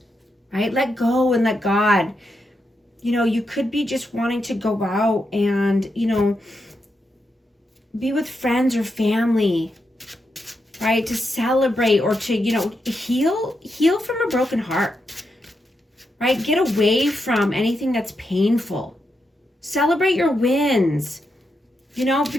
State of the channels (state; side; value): normal; both; correlation 0.84